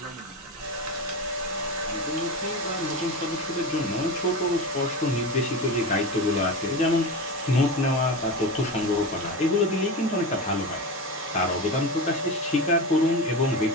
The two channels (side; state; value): both; normal; correlation 0.24